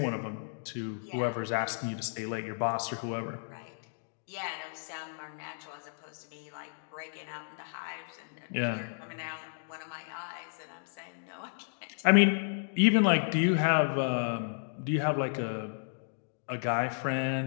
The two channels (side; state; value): right; silent; digital silence